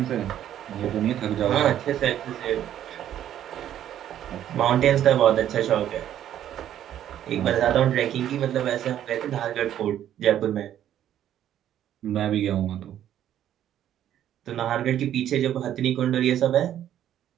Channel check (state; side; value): quieter; left; 11.1 dB